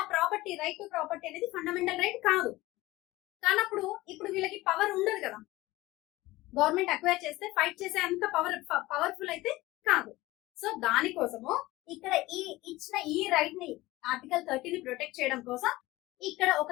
ఆ ప్రాపర్టీ, రైట్ టు ప్రాపర్టీ అనేది ఫండమెంటల్ రైట్ కాదు. కానప్పుడు ఇప్పుడు వీళ్ళకి పవర్ ఉండదు కదా. గవర్నమెంట్ అక్వైర్ చేస్తే ఫైట్ చేసే అంత పవర్ఫుల్ అయితే కాదు. సో దానికోసము ఇక్కడ ఇచ్చిన ఈ రైట్ ని, ఆర్టికల్ 30 ని ప్రొటెక్ట్ చేయడం కోసం ఇక్కడ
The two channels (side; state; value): right; quieter; 18.8 dB